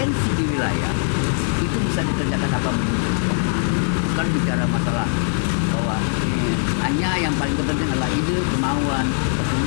di wilayah itu bisa dikerjakan apa bukan bicara masalah bahwa hanya yang paling penting adalah ide, kemauan,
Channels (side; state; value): right; silent; digital silence